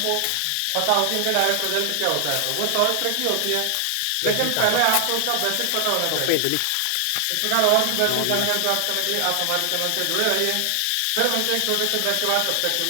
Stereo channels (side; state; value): both; different; correlation 0.00